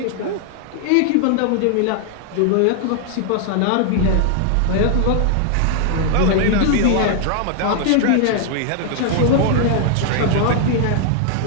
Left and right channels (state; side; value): different; both; correlation 0.00